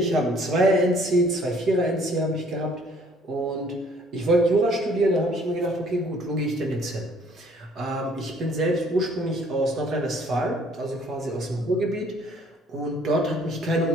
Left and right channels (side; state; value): both; normal; correlation 0.59